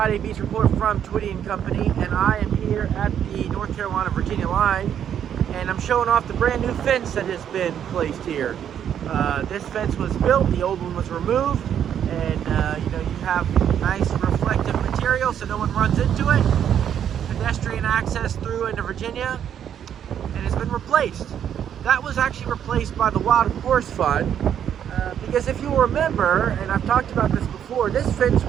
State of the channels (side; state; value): left; quieter; 9.2 dB